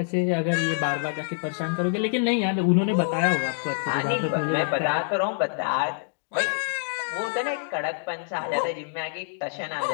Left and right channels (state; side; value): silent; right; digital silence